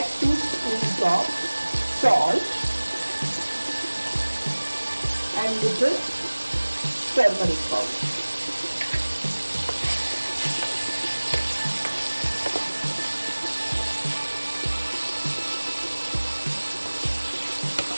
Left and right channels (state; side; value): inverted; both; correlation -1.00